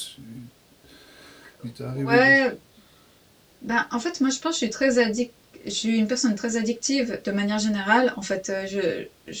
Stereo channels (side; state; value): both; identical; correlation 1.00